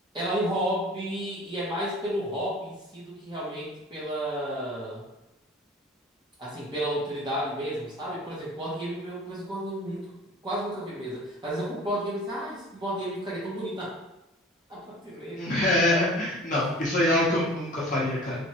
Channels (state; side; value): normal; both; correlation 0.43